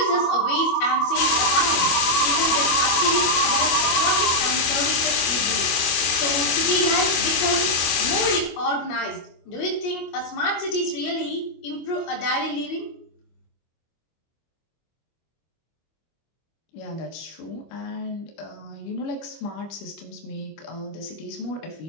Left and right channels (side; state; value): right; late; 25 ms